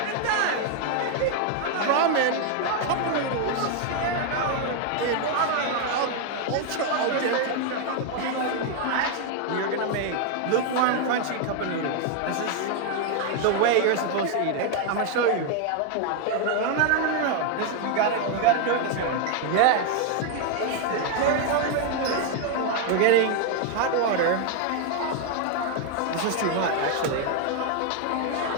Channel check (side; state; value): both; different; correlation 0.00